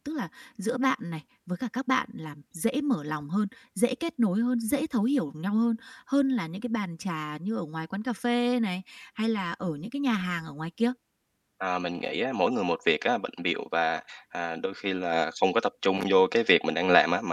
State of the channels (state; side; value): identical; both; correlation 1.00